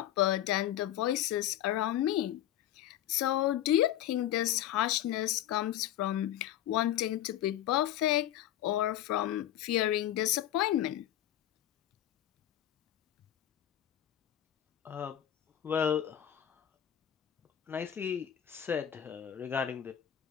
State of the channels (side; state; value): right; quieter; 11.9 dB